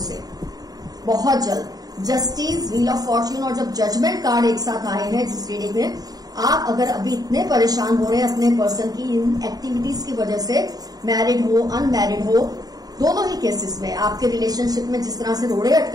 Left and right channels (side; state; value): left; late; 0.18 ms